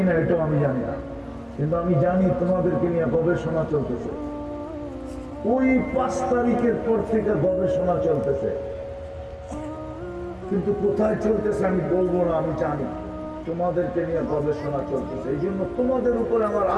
এটাও আমি জানি না, কিন্তু আমি জানি তোমাদেরকে নিয়ে গবেষণা চলতেছে। ওই 5 তারিখের পর থেকে গবেষণা চলতেছে, কিন্তু কোথায় চলতেছে আমি বলবো না। আমি জানি তোমাদেরকে নিয়ে গবেষণা চলতেছে। এই জন্য তোমাদের উপরে আমার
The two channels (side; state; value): both; identical; correlation 1.00